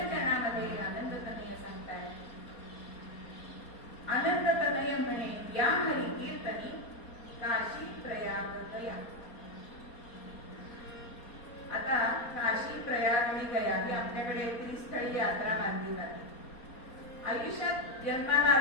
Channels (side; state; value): right; late; 4.3 ms